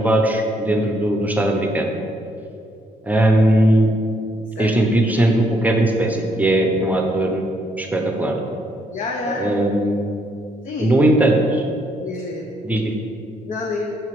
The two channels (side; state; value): both; normal; correlation 0.73